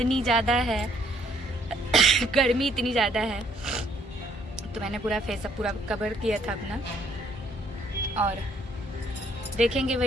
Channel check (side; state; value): both; normal; correlation 0.65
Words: ज़्यादा है गर्मी इतनी ज़्यादा है, तो मैंने पूरा फेसअप पूरा कवर किया था अपना। और देखेंगे